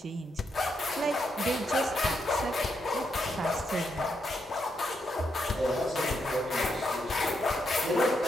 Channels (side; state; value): both; normal; correlation 0.80